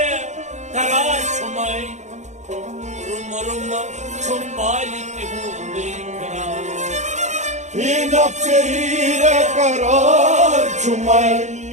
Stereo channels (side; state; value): left; late; 0.34 ms